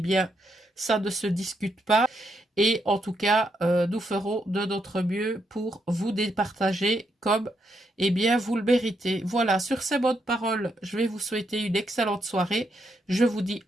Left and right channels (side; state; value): both; normal; correlation 0.79